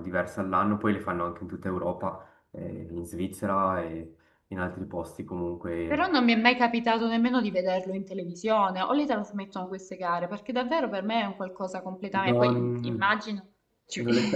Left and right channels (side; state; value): both; identical; correlation 1.00